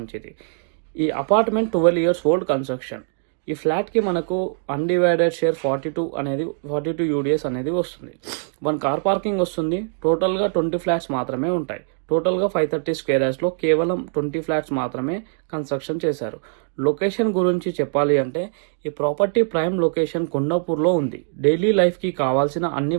ఈ అపార్ట్మెంట్ 12 ఇయర్స్ ఓల్డ్ కన్స్ట్రక్షన్. ఈ ఫ్లాట్కి మనకు అన్డివైడెడ్ షేర్ 42 యూడిఎస్ అనేది వస్తుంది. 1 కార్ పార్కింగ్ వస్తుంది. టోటల్గా 20 ఫ్లాట్స్ మాత్రమే ఉంటాయి. టోటల్గా 530 స్క్వేర్ యార్డ్స్లో కేవలం 20 ఫ్లాట్స్ మాత్రమే కన్స్ట్రక్షన్ చేశారు. లొకేషన్ గురించి చెప్పాలి అంటే ఈ ప్రాపర్టీ ప్రైమ్ లొకేషన్ కొండాపూర్లో ఉంది. డైలీ లైఫ్కి కావాల్సిన అన్ని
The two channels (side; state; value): left; silent; digital silence